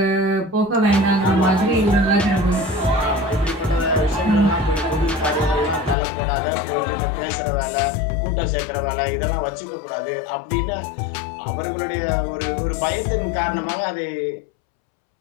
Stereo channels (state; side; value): drops out; right; at 6.0 s